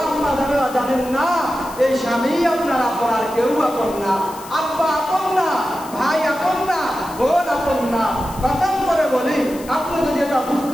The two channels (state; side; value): noise; left; hiss, 17 dB below the sound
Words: আম্মা জানেরা জানেন না এই স্বামী আপনার আপন, আর কেউ আপন না। আব্বা আপন না, ভাই আপন না, বোন আপন না। কসম করে বলি, আপনি যদি এটা